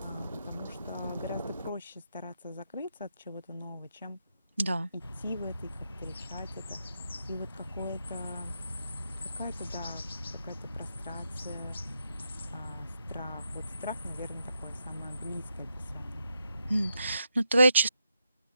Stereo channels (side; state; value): both; inverted; correlation -0.83